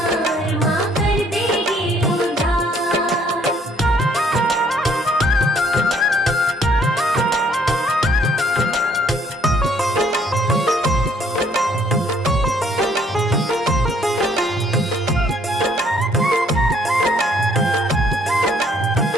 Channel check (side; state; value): both; normal; correlation 0.63